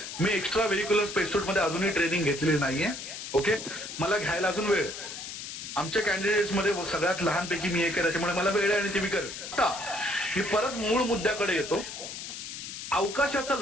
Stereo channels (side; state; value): left; noise; hiss, 9 dB below the sound